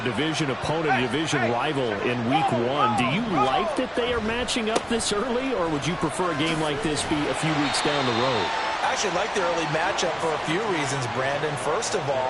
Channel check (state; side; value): identical; both; correlation 1.00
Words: division opponent, division rival in week 1. Do you like that they are matching up this early, or would you prefer a game like this be a few weeks down the road? I actually like the early matchup for a few reasons, Brandon. First of